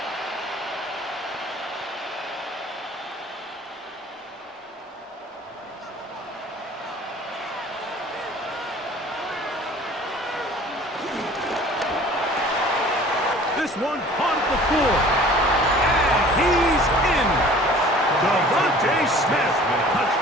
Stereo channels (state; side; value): normal; both; correlation 0.48